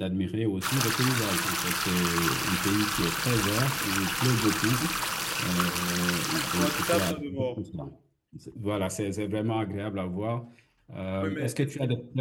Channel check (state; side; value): identical; both; correlation 1.00